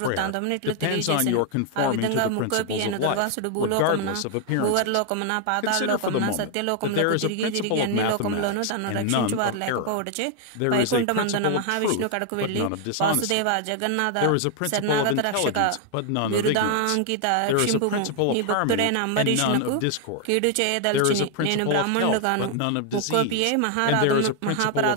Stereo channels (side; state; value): both; different; correlation 0.00